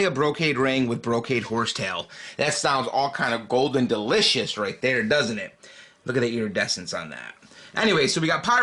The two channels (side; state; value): both; identical; correlation 1.00